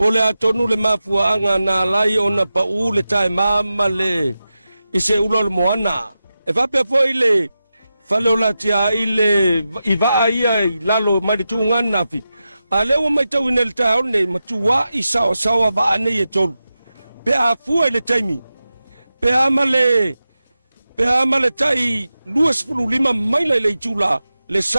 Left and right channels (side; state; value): both; inverted; correlation -0.92